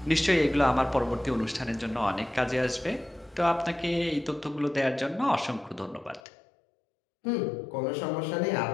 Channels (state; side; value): drops out; right; at 6.2 s